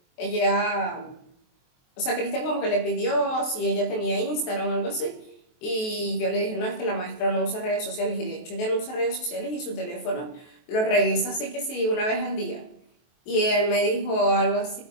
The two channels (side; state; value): right; late; 23 ms